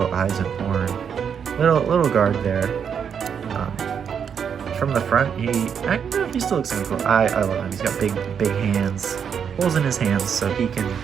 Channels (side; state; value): left; quieter; 7.4 dB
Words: eyes, and horn. Little guard there. From the front, he still looks kind of cool. I love him. He's got big hands, holes in his hands, so he can